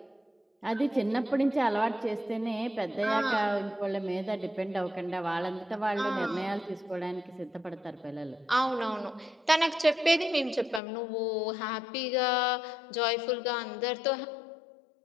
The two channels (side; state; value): right; drops out; at 10.8 s